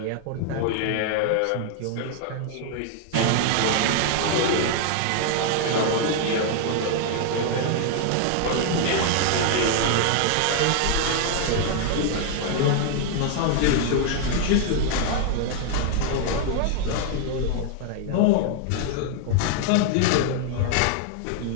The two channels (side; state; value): both; different; correlation 0.00